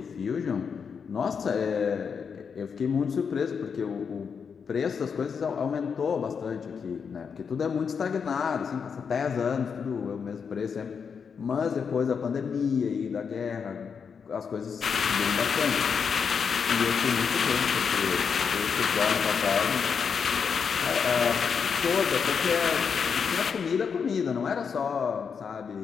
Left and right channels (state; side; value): quieter; right; 6.3 dB